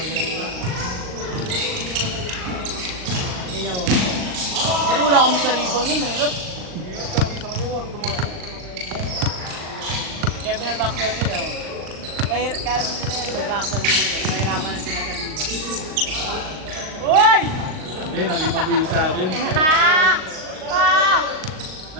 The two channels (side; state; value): left; late; 38 ms